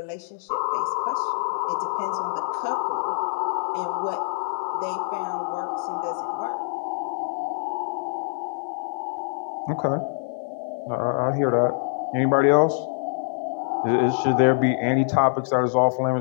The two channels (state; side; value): silent; right; 61 dB below the other